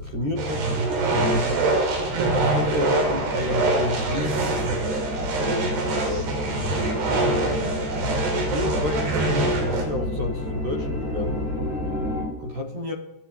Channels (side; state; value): left; late; 13 ms